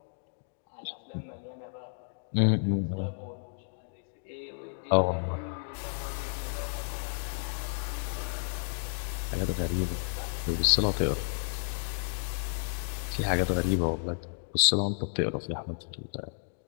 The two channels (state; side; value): silent; right; digital silence